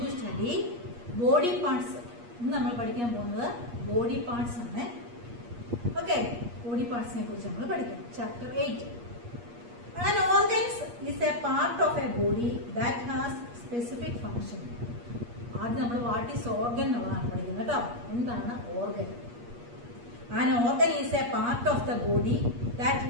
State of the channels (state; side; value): late; left; 8.4 ms